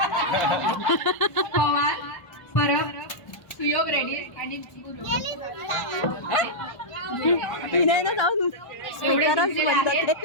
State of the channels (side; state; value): right; late; 1.0 ms